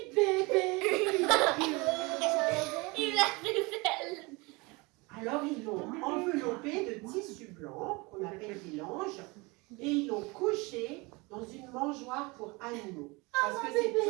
bébé. Il a fait elle. Alors ils l'ont enveloppé de tissu blanc, qu'on appelle des langes, et ils l'ont couché dans une mangeoire pour animaux. Parce que c'est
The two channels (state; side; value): quieter; left; 25.9 dB